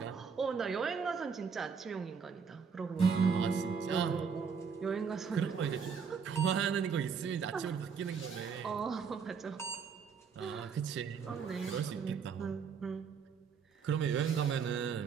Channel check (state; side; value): quieter; left; 6.2 dB